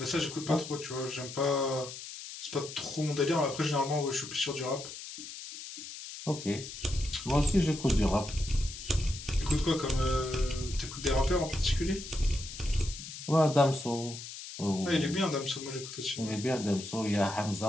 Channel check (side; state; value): left; noise; hiss, 11 dB below the sound